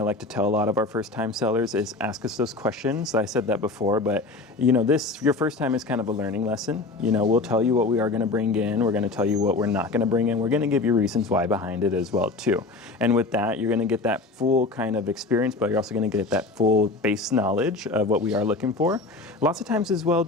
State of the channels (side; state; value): right; quieter; 3.5 dB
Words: to tell a lot of our first-time sellers is ask us those questions. I said that before, but you know, your first time is kind of a learning lesson. You know, we'll tell you what we are going to bring in. We're going to tell you what we're not going to bring in. We're going to give you reasons why behind it as well too. And with that, you're going to get that full kind of experience, but you're also going to get that full base knowledge of what we are looking for. Lots of times as well